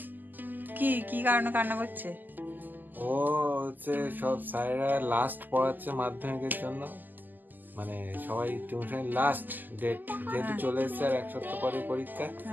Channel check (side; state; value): left; late; 0.086 ms